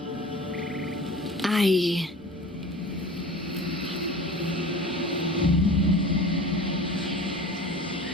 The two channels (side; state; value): both; normal; correlation 0.38